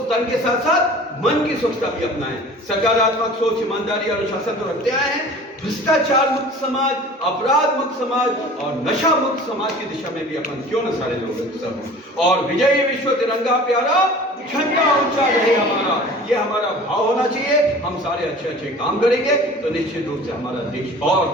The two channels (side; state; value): both; normal; correlation 0.43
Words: तन के साथ साथ मन की स्वच्छता भी अपनाएं। सकारात्मक सोच, ईमानदारी और अनुशासन तो रखते आए हैं। भ्रष्टाचार मुक्त समाज, अपराध मुक्त समाज और नशा मुक्त समाज की दिशा में भी अपन क्यों न सारे लोग सब। और विजयी विश्व तिरंगा प्यारा झंडा ऊंचा रहे हमारा, ये हमारा भाव होना चाहिए। हम सारे अच्छे अच्छे काम करेंगे तो निश्चित रूप से हमारा देश और